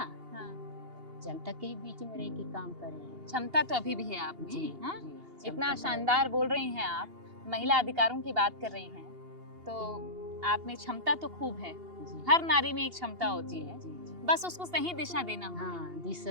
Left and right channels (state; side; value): late; left; 2.8 ms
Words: जनता के ही बीच में रह के काम करेंगे। क्षमता तो अभी भी है आप में, जी हाँ? जी, इतना क्षमता तो शानदार बोल रही हैं आप, महिला अधिकारों की बात कर रही हैं, तो आप में क्षमता तो खूब है। जी, हर नारी में एक क्षमता होती जी, है, जी, जी। बस उसको सही दिशा देना होगा। हाँ,